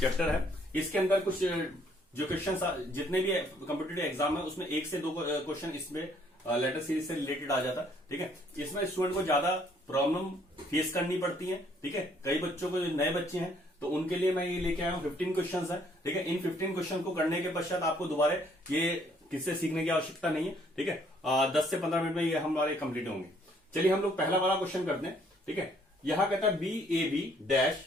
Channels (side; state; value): both; normal; correlation 0.65